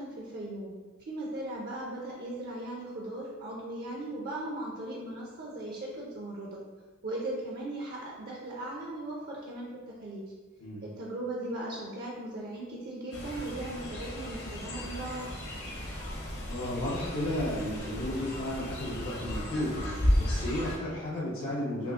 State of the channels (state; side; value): normal; both; correlation 0.61